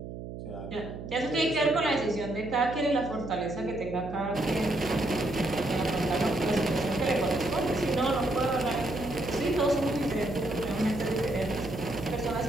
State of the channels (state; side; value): noise; right; hum, 9 dB below the sound